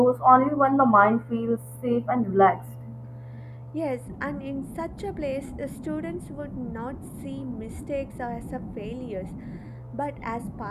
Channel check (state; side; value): identical; both; correlation 1.00